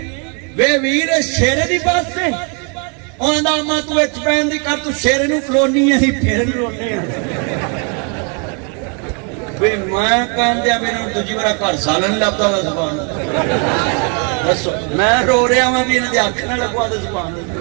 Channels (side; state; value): left; quieter; 37.2 dB